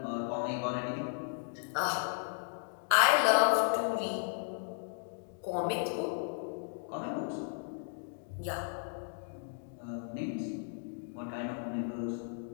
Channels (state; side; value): silent; right; digital silence